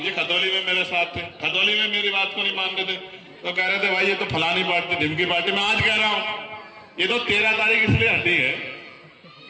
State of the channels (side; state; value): both; identical; correlation 1.00